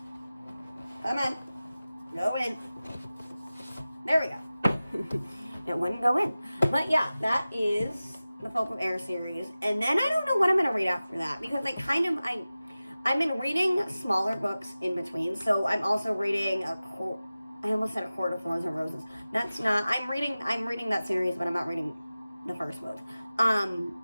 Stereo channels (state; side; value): inverted; both; correlation -0.96